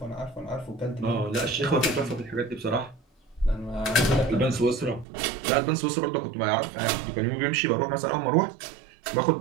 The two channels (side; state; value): left; drops out; at 5.1 s